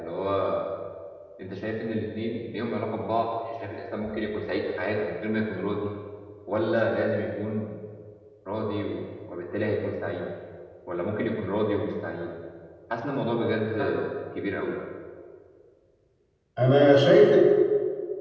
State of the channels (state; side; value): identical; both; correlation 1.00